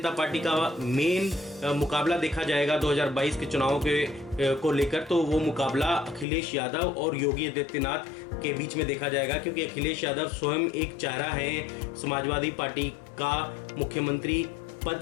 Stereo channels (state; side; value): drops out; right; at 6.2 s